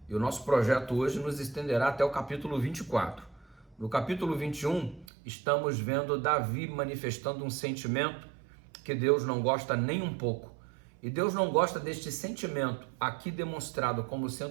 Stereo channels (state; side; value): drops out; left; at 5.1 s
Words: e o nosso projeto hoje nos estenderá até o capítulo 24. No capítulo 21, estamos vendo Davi manifestando um sentimento que Deus não gosta nem um pouco. E Deus não gosta deste sentimento, aqui demonstrado como